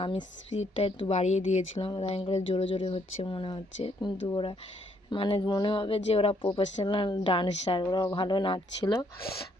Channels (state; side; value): normal; both; correlation 0.70